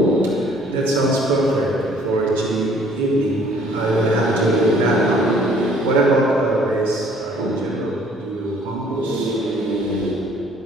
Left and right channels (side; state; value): both; normal; correlation 0.58